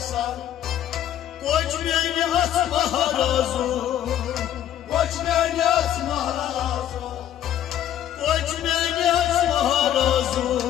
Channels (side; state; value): right; quieter; 11.2 dB